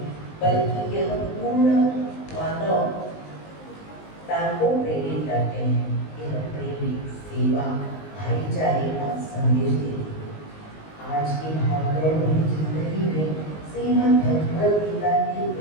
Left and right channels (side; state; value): right; late; 19 ms